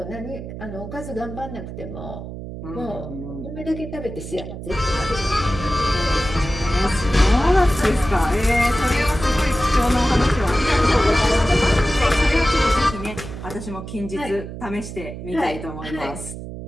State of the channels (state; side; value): noise; right; hum, 10 dB below the sound